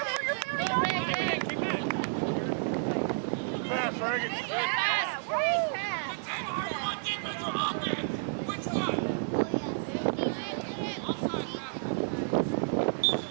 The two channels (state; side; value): silent; left; digital silence